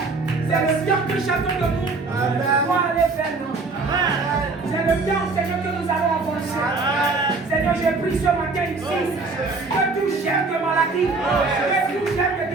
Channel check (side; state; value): left; quieter; 3.8 dB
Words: c'est le temps que chacun de nous doit aller vers nous. C'est le temps, Seigneur, que nous allons avancer. Seigneur, j'ai pris ce matin ici que tout chef de maladie, que tout chef de